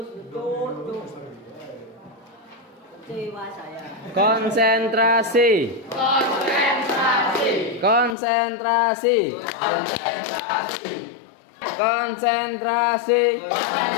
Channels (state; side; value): drops out; right; at 8.2 s